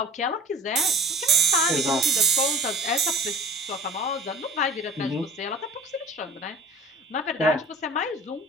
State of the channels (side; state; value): both; normal; correlation 0.43